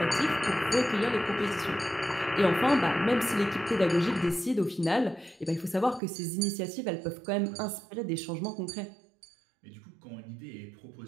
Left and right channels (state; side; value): drops out; left; at 6.0 s